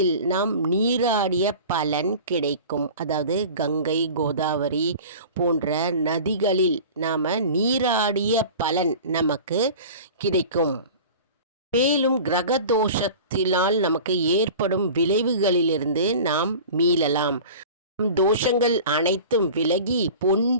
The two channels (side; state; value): both; inverted; correlation -0.39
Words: நீராடிய பலன் கிடைக்கும். அதாவது கங்கை, கோதாவரி போன்ற நதிகளில் நீராடிய பலன் நமக்கு கிடைக்கும். மேலும் கிரக தோஷத்தினால் நமக்கு ஏற்படும் விளைவுகளிலிருந்து நாம் மீளலாம். தோஷங்கள் அனைத்தும் விலகி பொன்,